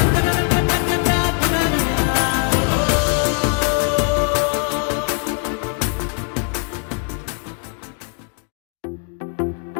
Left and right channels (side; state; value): right; quieter; 37.6 dB